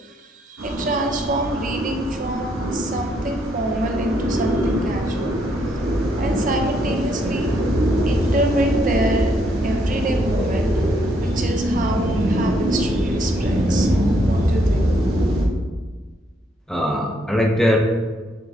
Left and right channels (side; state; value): both; normal; correlation 0.72